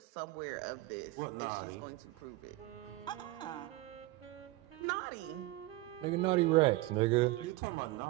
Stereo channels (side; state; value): left; quieter; 19.0 dB